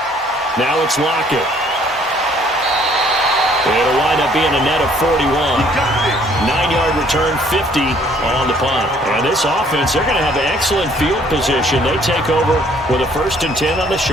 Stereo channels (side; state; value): both; normal; correlation 0.61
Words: Now it's Lockett. It'll wind up being a net of 41. 9-yard return, 50 on the punt. And this offense, they're going to have an excellent field position. They take over with a 1st and 10 on the